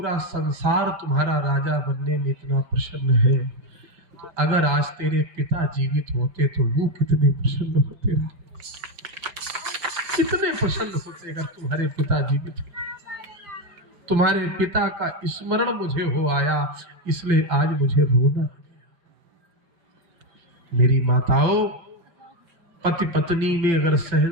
संसार तुम्हारा राजा बनने में इतना प्रसन्न है, तो अगर आज तेरे पिता जीवित होते तो वो कितने प्रसन्न होते, कितने प्रसन्न होते अगर तुम्हारे पिता जीवित होते। तुम्हारे पिता का स्मरण मुझे हो आया, इसलिए आज मुझे रोना। मेरी माताओं, पति पत्नी में अगर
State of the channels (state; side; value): late; left; 5.9 ms